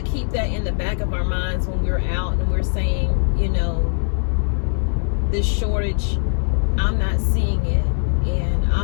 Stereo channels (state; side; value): silent; right; digital silence